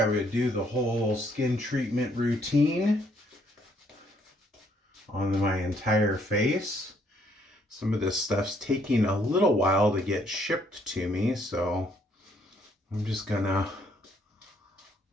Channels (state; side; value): normal; both; correlation 0.68